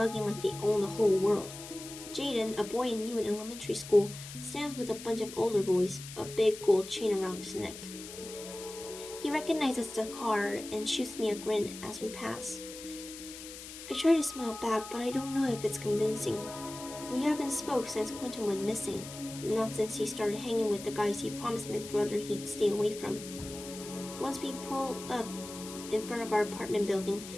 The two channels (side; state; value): left; noise; hiss, 12 dB below the sound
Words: like they own the whole world. Jaden, a boy I knew in elementary school, stands with a bunch of older boys, a big gold chain around his neck. He recognizes the car and shoots me a grin as we pass. I try to smile back, but I don't know if it's convincing. We haven't spoke since Quentin went missing, not since he started hanging with the guys he promised my brother he'd stay away from. Once we pull up in front of our apartment building,